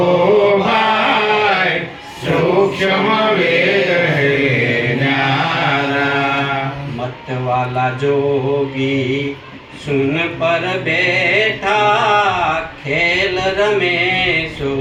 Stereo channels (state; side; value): identical; both; correlation 1.00